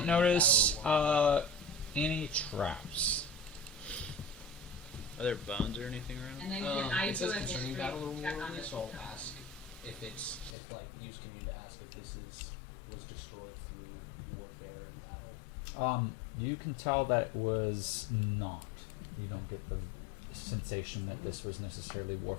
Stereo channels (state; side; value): drops out; right; at 10.6 s